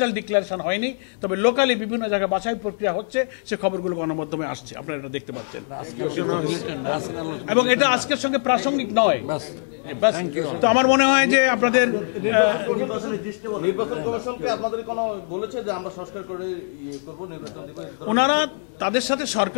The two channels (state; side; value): silent; right; digital silence